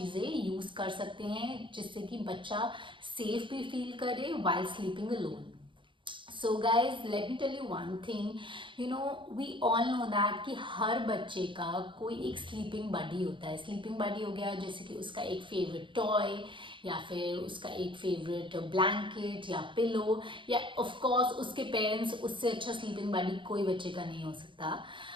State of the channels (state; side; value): late; left; 0.24 ms